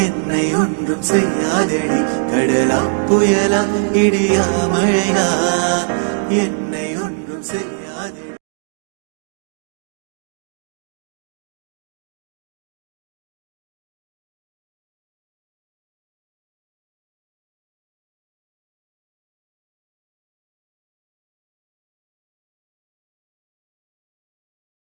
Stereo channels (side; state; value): left; silent; digital silence